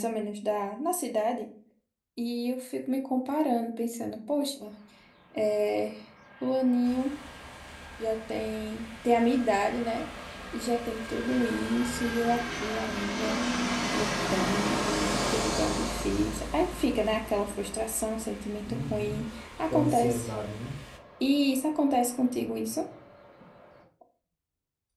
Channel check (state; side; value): identical; both; correlation 1.00